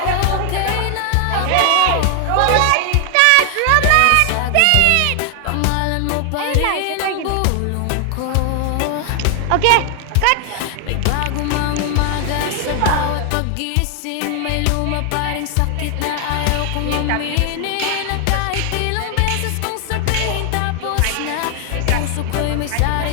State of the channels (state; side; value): different; both; correlation 0.00